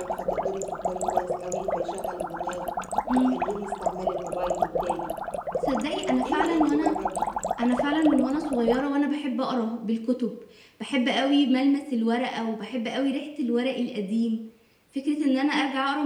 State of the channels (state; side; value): identical; both; correlation 1.00